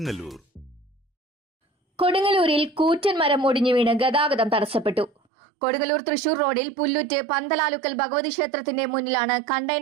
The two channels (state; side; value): drops out; left; at 5.1 s